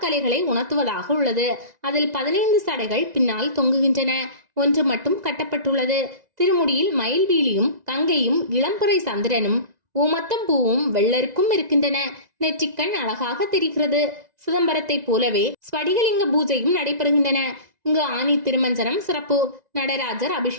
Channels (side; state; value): left; late; 1.9 ms